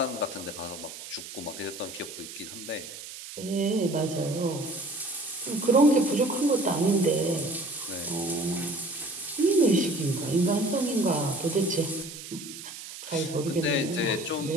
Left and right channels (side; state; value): right; noise; hiss, 12 dB below the sound